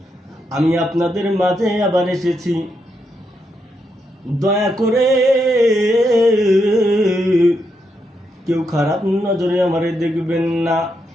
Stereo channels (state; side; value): normal; both; correlation 0.81